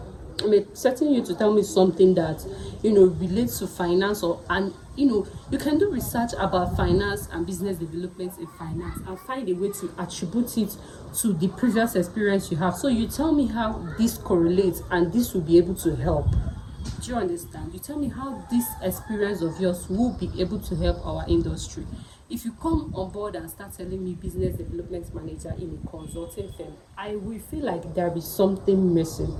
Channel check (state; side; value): identical; both; correlation 1.00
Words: I'm expecting you to tell me something that relates to finance, you can do research about finance and business development in finance and find a way to attribute it to the previous experience you have. So you tell me how this correlates and this will be able to help. Do you understand? You tell me how this experience of yours will be able to help our industry. If you come on board and start telling me business development manager in a consulting firm, I will feel like there is something missing.